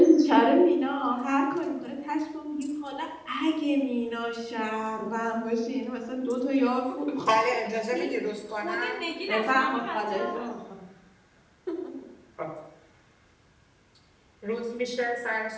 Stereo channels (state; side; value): identical; both; correlation 1.00